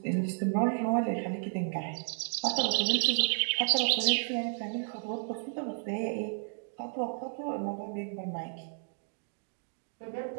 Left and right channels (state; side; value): silent; left; 56 dB below the other